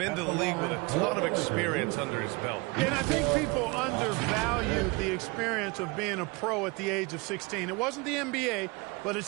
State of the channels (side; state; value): left; quieter; 26.5 dB